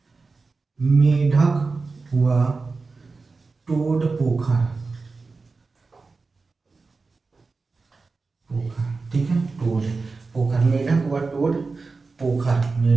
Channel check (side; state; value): left; quieter; 4.1 dB